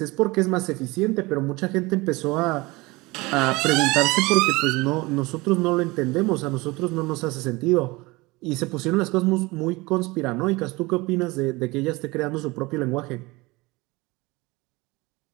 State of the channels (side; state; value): left; quieter; 23.0 dB